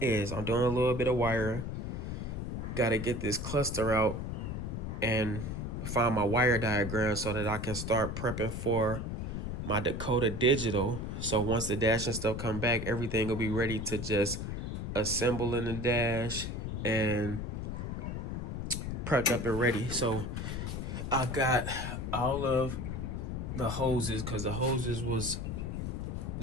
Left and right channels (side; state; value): left; noise; rumble, 4 dB below the sound